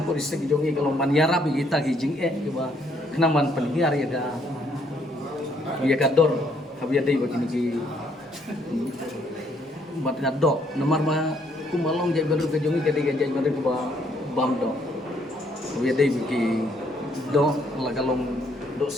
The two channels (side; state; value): both; normal; correlation 0.69